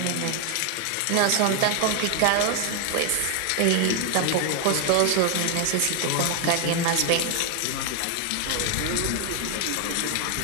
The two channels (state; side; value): different; both; correlation 0.01